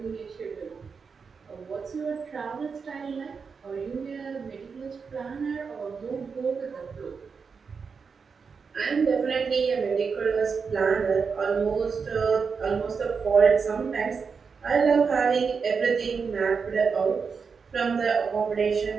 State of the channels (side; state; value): left; quieter; 5.5 dB